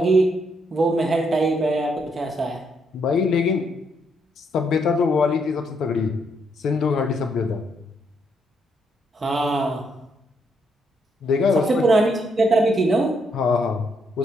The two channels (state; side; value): normal; both; correlation 0.75